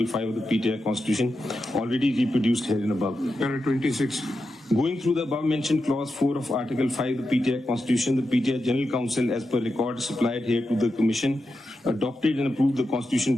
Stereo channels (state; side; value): normal; both; correlation 0.89